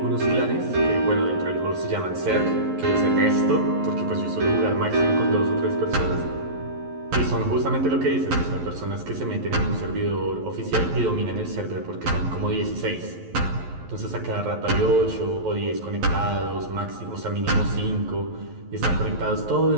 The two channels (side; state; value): left; late; 11 ms